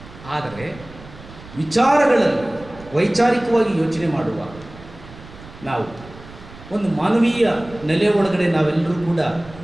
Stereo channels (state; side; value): noise; right; rumble, 18 dB below the sound